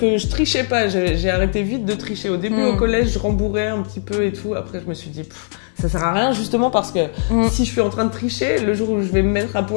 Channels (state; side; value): silent; right; digital silence